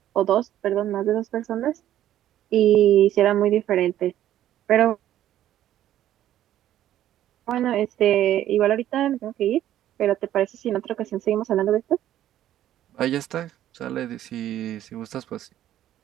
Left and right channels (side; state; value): left; quieter; 12.3 dB